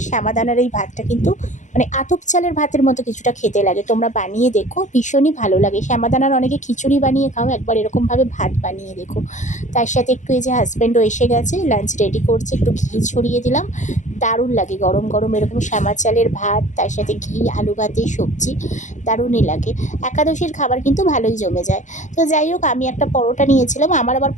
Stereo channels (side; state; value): right; late; 0.35 ms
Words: শ্যামাদানার এই ভাতটা কিন্তু মানে আতপ চালের ভাতের মতো কিছুটা খেতে লাগে। তোমরা বানিয়ে দেখো, ভীষণই ভালো লাগে। শ্যামাদানার অনেকে খিচুড়ি বানিয়ে খাও, একবার এরকমভাবে ভাত বানিয়ে দেখো। তার সাথে একটু এই যে হাজব্যান্ডও এসে গেছে, লাঞ্চ রেডি করছে, একটু ঘি ছড়িয়ে দিলাম। দারুণ লাগে গরম গরম এরকম শ্যামা চালের ভাত, তার সাথে ঘি, আলু ভাতে সবজি, দারুণই লাগে। একাদশীর খাবার কিন্তু ভালোই জমে যায়। তো যাই হোক, আমি একটা পরোটা নিয়েছিলাম, আমার আবার